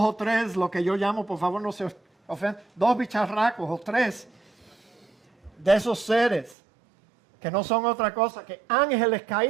3, lo que yo llamo, por favor no se ofendan, 2 bicharracos o 3 de esos seres que no son otra cosa que ángeles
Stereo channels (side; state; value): left; drops out; at 6.6 s